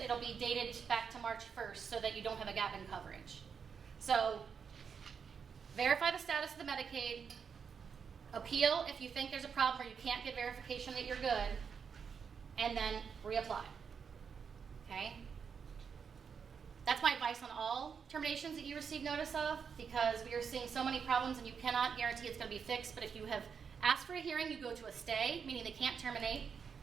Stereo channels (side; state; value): left; quieter; 6.5 dB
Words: it'll be dated back to March 1st so that you don't have a gap in coverage. So verify the status of the Medicaid. Appeal if you think there's a problem or you can't get verification that you're good. And then reapply. Okay? That's my advice on all terminations that you receive notice of, because we are seeing so many problems and you cannot guarantee it's going to be fixed. But if you have asked for a hearing, you go to a stay, meaning they can't terminate.